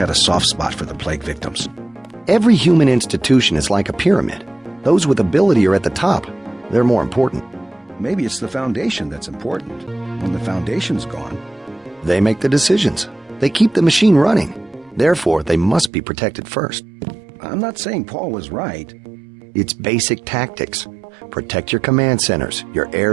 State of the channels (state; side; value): drops out; left; at 15.9 s